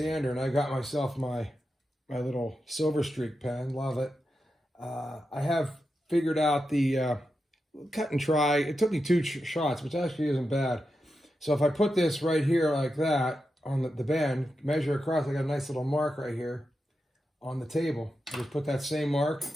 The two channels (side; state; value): both; normal; correlation 0.89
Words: and I got myself my little Silver Streak pen. Love it. I have figured out the cut and try. It took me 2 shots, which actually isn't bad. So if I put this right here like that on the bend, measure across, I got a nice little mark right here on the table. I just put that same mark